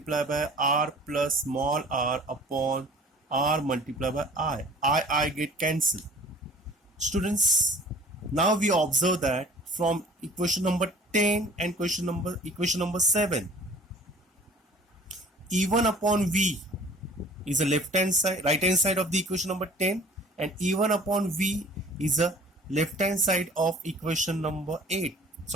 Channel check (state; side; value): normal; both; correlation 0.48